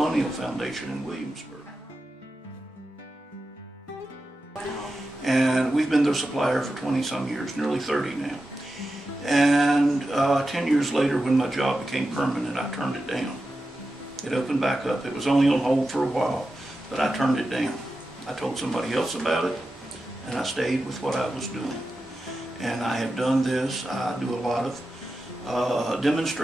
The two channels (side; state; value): both; normal; correlation 0.91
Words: Foundation in Williamsburg. And we've been their supplier for 20-some years, nearly 30 now. And 10 years later, when my job became permanent, I turned it down. It opened back up. It was only on hold for a while, but I turned it down. I told somebody else about it, and I stayed with what I was doing. And I have done this. I do a lot of